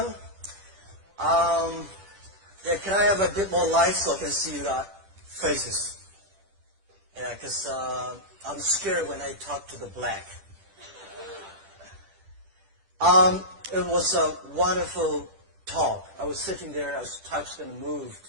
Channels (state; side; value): late; left; 10 ms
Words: Yeah, can I have a bit more light so I can see your faces? Yeah, because I'm scared when I talk to the black. It was a wonderful talk. I was sitting there, I was touched and